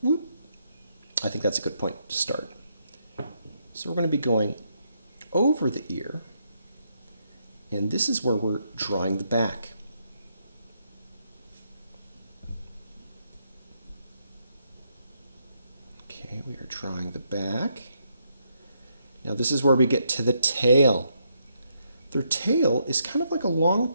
Whoop. I think that's a good point to start. So we're going to be going over the ear, and this is where we're drawing the back. we are drawing the back. Now this is where we get to the tail. Their tail is kind of like a long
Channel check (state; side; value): inverted; both; correlation -0.77